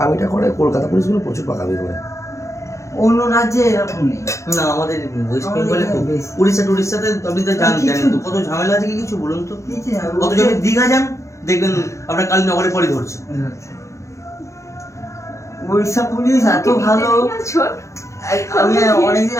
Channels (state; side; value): late; right; 0.14 ms